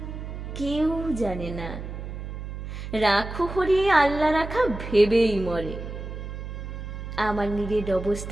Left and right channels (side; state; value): right; noise; hum, 8 dB below the sound